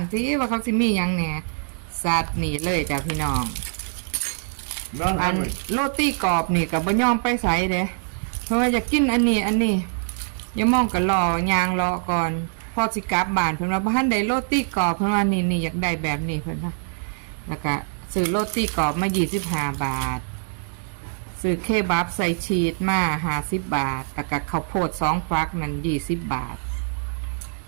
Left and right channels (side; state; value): left; silent; 58 dB below the other